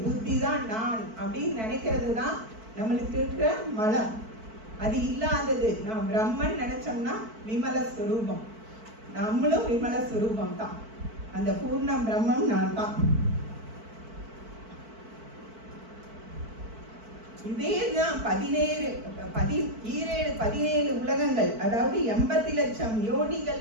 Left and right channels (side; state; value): left; late; 4.5 ms